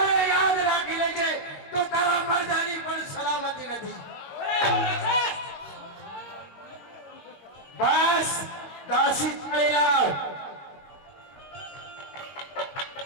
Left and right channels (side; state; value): right; late; 22 ms